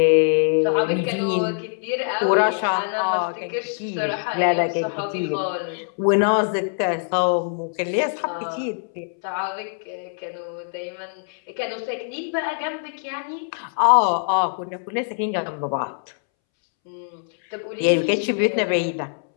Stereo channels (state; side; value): silent; right; 63 dB below the other